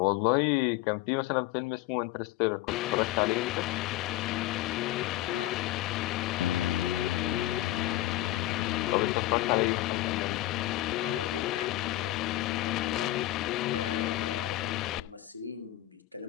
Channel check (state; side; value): quieter; right; 15.8 dB